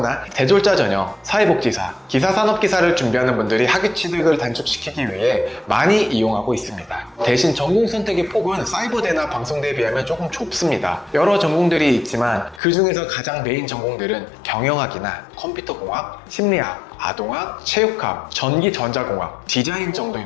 대졸자 전형, 사회복지사, 기사산업기사를 준비하는 분들이 학위 취득을 단축시키기 위해 많이 이용하고 있습니다. 대신 전공 선택의 폭은 사이버대나 방송대에 비하면 조금 좁습니다. 여러 전공들이 있지만 그 중에서 가장 메인 전공들은 경영학이나 컴퓨터공학, 심리학, 아동학, 체육학, 전기전자공학, 디자인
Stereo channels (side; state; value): right; drops out; at 12.6 s